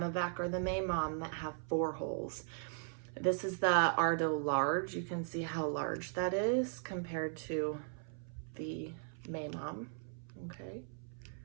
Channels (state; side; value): silent; left; 52 dB below the other